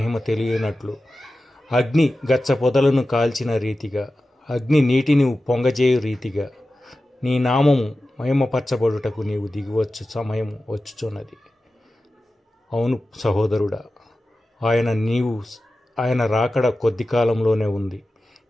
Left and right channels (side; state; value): both; normal; correlation 0.94